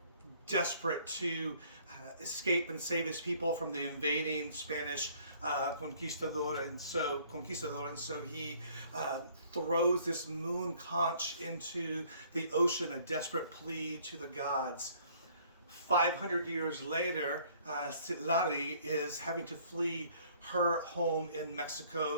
desperate to escape and save his people from the invading Spanish conquistador, and so he throws this moon conch into the ocean, a desperate plea to the gods. 500 years later, Citlali is having to flee her home in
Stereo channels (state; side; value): inverted; both; correlation -0.59